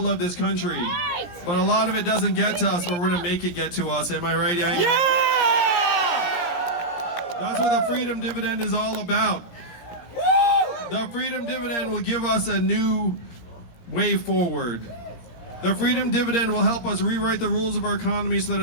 of this country. But a lot of it doesn't get to us, but we're going to make it get to us. Am I right, Yang? Yeah! That's what the freedom dividend is all about. The freedom dividend will give us a new way forward. The freedom dividend will help us rewrite the rules of our economy so that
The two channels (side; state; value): right; late; 17 ms